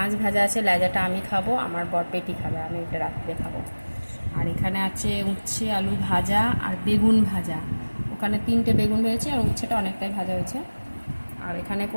ভাজা আছে, লেজাটা আমি খাবো, আমার বর পেটি খাবে, আমি এটা রাত্রে খাবো। আর এখানে আছে উচ্ছে আলু ভাজা আর বেগুন ভাজা। ওখানে 3টে বেগুন হয়েছে আর উচ্ছেটা অনেকটাই ভাজা হয়েছে। আর এখানে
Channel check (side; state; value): both; inverted; correlation -1.00